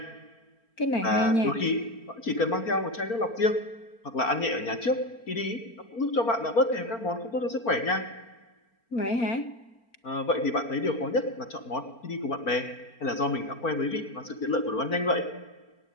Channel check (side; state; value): right; late; 4.4 ms